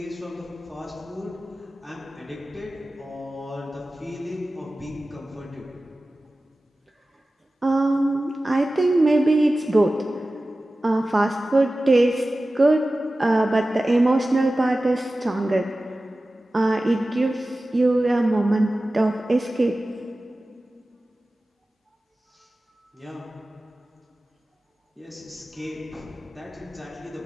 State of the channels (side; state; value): both; normal; correlation 0.96